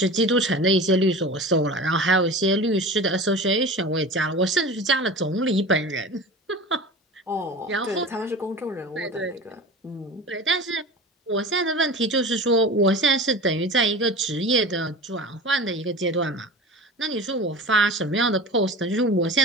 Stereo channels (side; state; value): both; normal; correlation 0.34